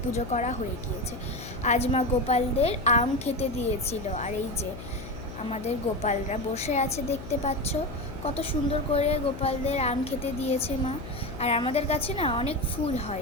পুজো করা হয়ে গিয়েছে। আজ মা গোপালদের আম খেতে দিয়েছিল, আর এই যে আমাদের গোপালরা বসে আছে দেখতে পাচ্ছ। কত সুন্দর করে গোপালদের আম খেতে দিয়েছে মা। আর আমাদের কাছে না অনেক ফুল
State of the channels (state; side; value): noise; left; hum, 12 dB below the sound